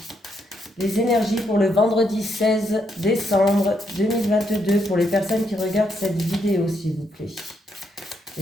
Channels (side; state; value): both; normal; correlation 0.77